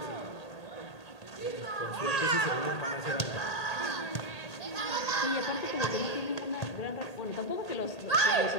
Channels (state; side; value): late; right; 1.8 ms